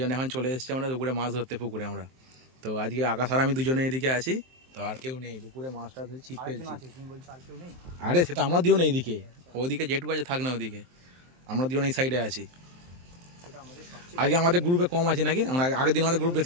এখন চলে এসেছি আমরা দুপুরে মাছ ধরতে পুকুরে আমরা। তো আজকে আকাশ আর আমি দুজনে এদিকে আছি, তো আর কেউ নেই দুপুরে মাছটা ধরে ছিপ ফেলছি। আরে সে তো আমরা দিও না এইদিকে, ওদিকে যেটুকু আছে থাক না, ওদিকে আমরা দিও না এই সাইডে আছি। আজকে আমাদের গ্রুপে কম আছে নাকি? আমরা আগের দিন আমাদের গ্রুপ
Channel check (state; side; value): late; left; 23 ms